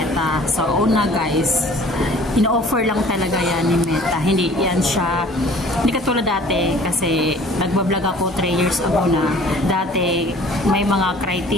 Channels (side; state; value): both; normal; correlation 0.50